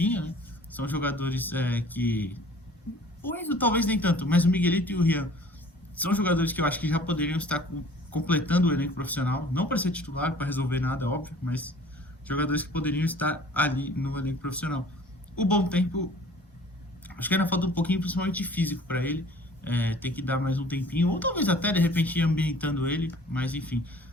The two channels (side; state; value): both; normal; correlation 0.49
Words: né? São jogadores que... O Enzo talvez nem tanto, mas o Miguelito e o Rian são jogadores que eu acho que já poderiam estar completando o elenco profissional, não para ser titular, para resolver nada, óbvio, mas jogadores que poderiam estar ali no elenco profissional. O Bom Tempo, acho que ainda falta um pouquinho, principalmente físico, para ele. Tem que dar mais um tempinho, ou talvez até de repente ir ambientando ele, mas enfim.